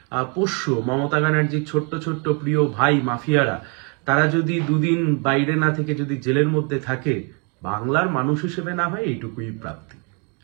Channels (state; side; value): quieter; left; 35.0 dB